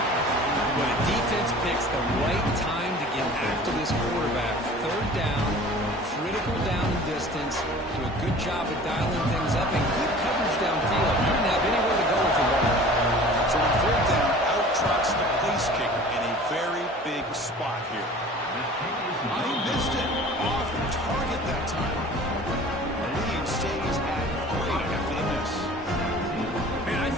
Job of dialing things up and good coverage downfield. He didn't have anywhere to go with the ball. So on third down, out trots the place kicker in a very big spot here. I missed it. Off target that time. The lead stays at 3 after the miss. Man, I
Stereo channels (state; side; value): normal; both; correlation 0.44